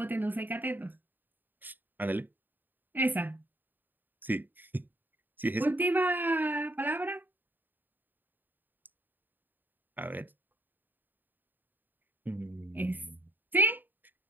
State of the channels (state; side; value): late; left; 0.090 ms